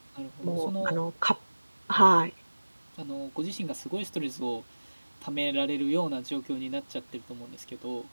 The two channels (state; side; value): inverted; both; correlation -1.00